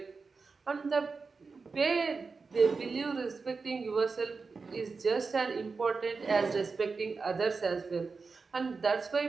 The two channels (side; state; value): left; quieter; 4.5 dB